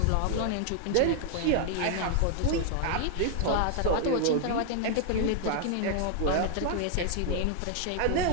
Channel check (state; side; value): different; both; correlation 0.00